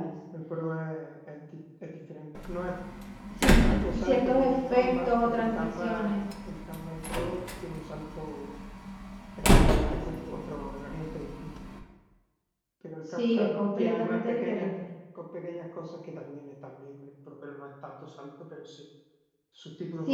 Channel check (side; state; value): both; identical; correlation 1.00